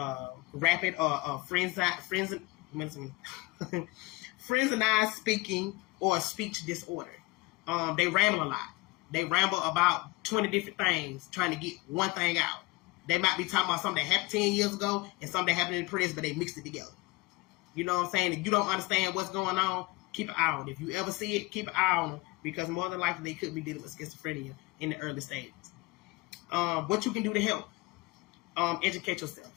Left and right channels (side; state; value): right; quieter; 23.3 dB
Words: rapid or frenzied speaking or speech disorder. They ramble a lot. They ramble about 20 different things trying to get one thing out. They might be talking about something that happened 10 years ago and something that happened in the prison, but they mixed it together. You know what I'm saying? If you don't understand what's going on, keep an eye on it. If you ever see it, keep an eye on it, because more than likely they could be dealing with schizophrenia in the early stages. What you can do to help, educate yourself.